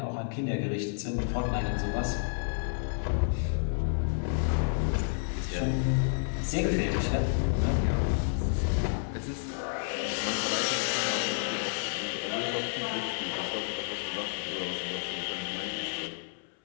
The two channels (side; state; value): right; silent; 58 dB below the other